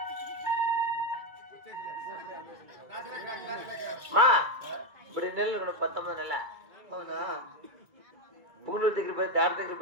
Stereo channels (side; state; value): left; late; 2.4 ms